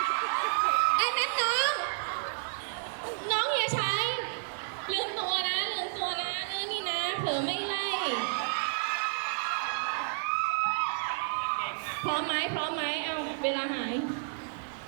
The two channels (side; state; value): left; silent; 57 dB below the other